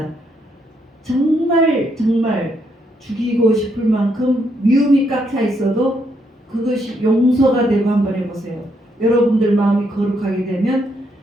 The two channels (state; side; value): normal; both; correlation 0.75